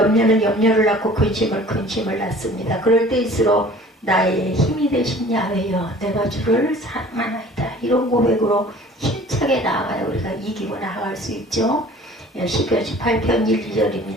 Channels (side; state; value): both; normal; correlation 0.48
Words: 염려를 낳고 근심을 낳습니다. 그럴 때일수록 나의 힘이 되신 야훼여 내가 주를 사랑하나이다. 이런 고백으로 힘차게 나아가야 우리가 이기고 나아갈 수 있죠. 시편 18편 1,